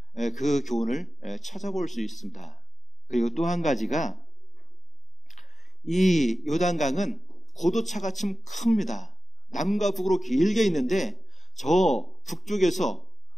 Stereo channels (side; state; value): both; normal; correlation 0.93